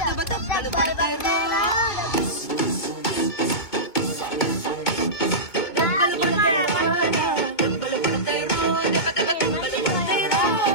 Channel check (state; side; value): late; right; 2.7 ms